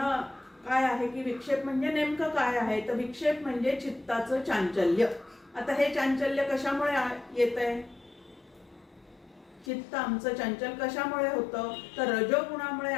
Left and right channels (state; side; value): drops out; right; at 9.7 s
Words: काय आहे की विक्षेप म्हणजे नेमकं काय आहे, तर विक्षेप म्हणजे चित्ताचं चांचल्य. आता हे चांचल्य कशामुळे येत आहे, चित्त आमचं चंचल कशामुळे होतं, तर रजोगुणामुळे